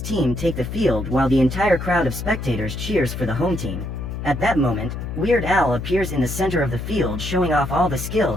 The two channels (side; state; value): left; noise; hum, 6 dB below the sound